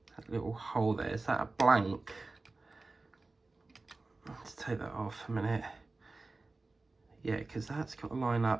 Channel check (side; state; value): left; quieter; 3.4 dB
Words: little hole there. Is that a blank? Let's take that off a minute. Yeah, because that's got to line